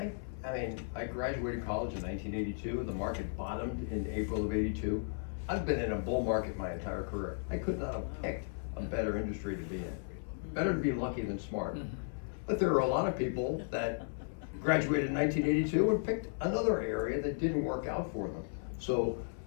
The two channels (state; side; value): silent; right; 54 dB below the other